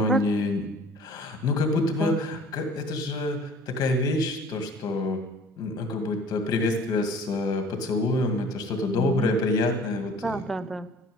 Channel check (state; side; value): normal; both; correlation 0.49